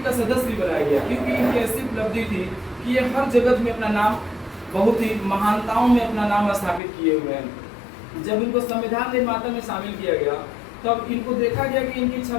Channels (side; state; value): right; drops out; at 6.8 s